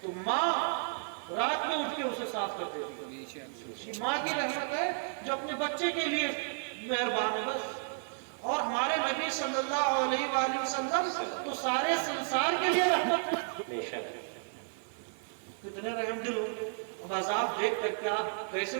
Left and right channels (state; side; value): silent; left; 56 dB below the other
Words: تو ماں رات میں اٹھ کے اسے صاف کر دیتی ہے۔ ماں کی رحمت ہے جو اپنے بچے کے لیے مہربان ہے بس۔ اور ہمارے نبی صلی اللہ علیہ وآلہ وسلم تو سارے سنسار کے لیے رحمت ہے۔ کتنے رحم دل ہو۔ اب عذاب دیکھ کر کے آپ کیسے